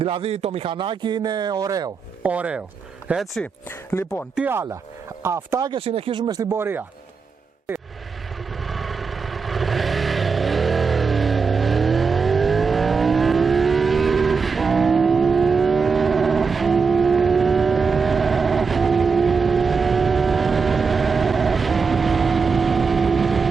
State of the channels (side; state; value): left; quieter; 5.2 dB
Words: το μηχανάκι είναι ωραίο. Έτσι, λοιπόν, τι άλλα. Αυτά και συνεχίζουμε στην πορεία.